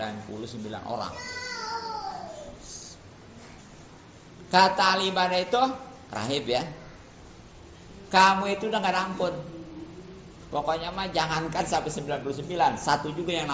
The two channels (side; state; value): both; identical; correlation 1.00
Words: orang. Kata ahli ibadah itu, rahib ya, kamu itu udah gak ada ampun. Pokoknya mah jangankan sampai 99, satu juga yang